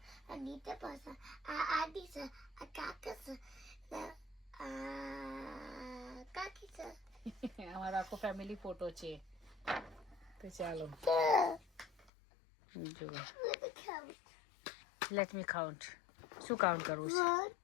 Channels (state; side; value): drops out; right; at 12.1 s